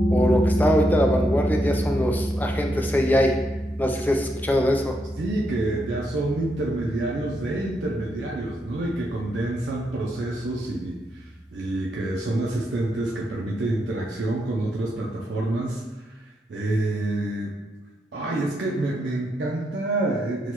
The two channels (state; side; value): normal; both; correlation 0.80